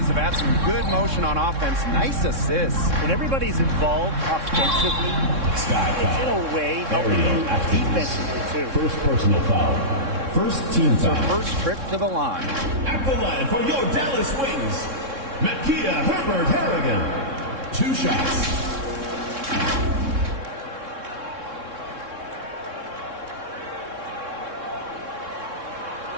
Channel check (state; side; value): late; left; 3.6 ms